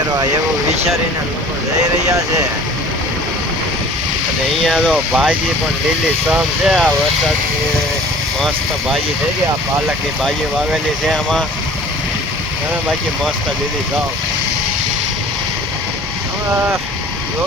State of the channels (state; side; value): normal; both; correlation 0.46